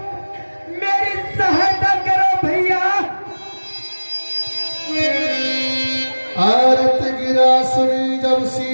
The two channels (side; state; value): both; inverted; correlation -1.00